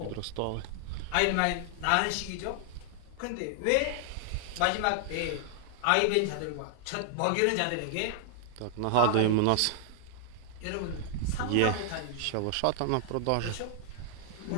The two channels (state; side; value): different; both; correlation 0.00